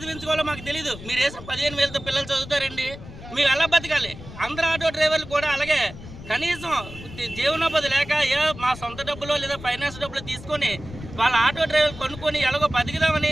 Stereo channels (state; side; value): noise; left; rumble, 14 dB below the sound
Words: మాకు తెలీదు. మీరు వేసిన 15,000తో పిల్లలు చదువుతారండి? మేము ఎలా బతకాలి? అందరు ఆటో డ్రైవర్లు కూడా అలాగే కనీసం జీవనోపాధి లేక మా సొంత డబ్బులో లేదా ఫైనాన్స్ డబ్బులు తీసుకొని వాళ్ళ ఆటో డ్రైవర్లు కొనుక్కొని ఎలాగో